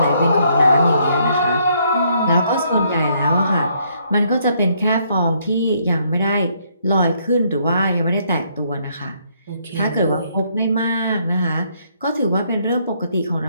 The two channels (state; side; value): inverted; both; correlation -0.70